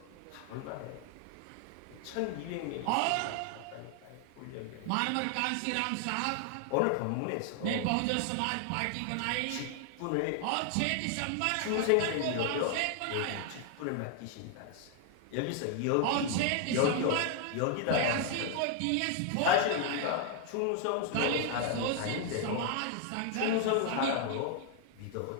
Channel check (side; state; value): both; different; correlation 0.00